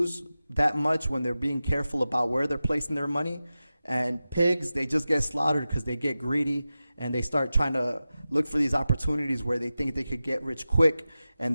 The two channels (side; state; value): both; inverted; correlation -0.94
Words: that much when they're being careful about where they're placing their money. And pigs, they just get slaughtered because they get greedy and they start trying to look for these opportunities where they think they could get rich quick, and